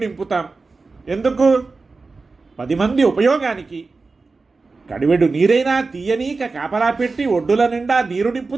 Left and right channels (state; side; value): quieter; left; 4.0 dB